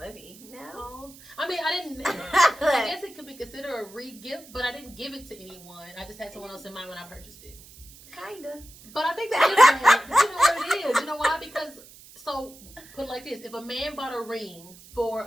No. I mean, I guess it could be considered a re-gift, but I didn't give it to anyone. I just had someone else in mind when I purchased it. Kinda. But I think that is bad. You know what it is? You know why? Because, so, put it like this. If a man bought a ring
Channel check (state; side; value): noise; right; hiss, 21 dB below the sound